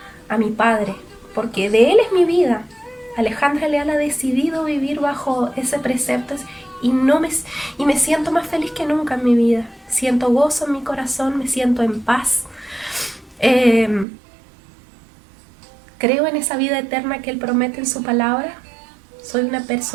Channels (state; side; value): drops out; left; at 14.1 s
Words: a mi Padre, porque de Él es mi vida, Alejandra Leal ha decidido vivir bajo ese precepto y me siento más feliz que nunca en mi vida. Siento gozo en mi corazón, me siento en paz. Creo en esa vida eterna que Él promete en su palabra. Soy una